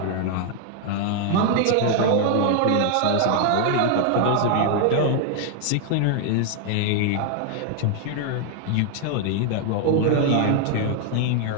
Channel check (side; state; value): both; different; correlation 0.00